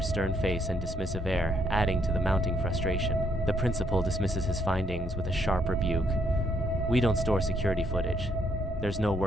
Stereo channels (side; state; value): both; normal; correlation 0.72